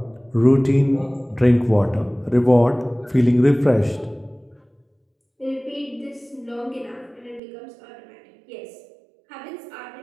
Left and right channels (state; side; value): drops out; left; at 7.4 s